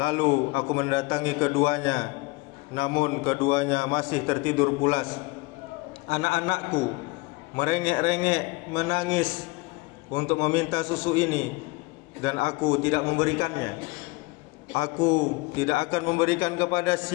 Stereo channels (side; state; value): right; quieter; 24.1 dB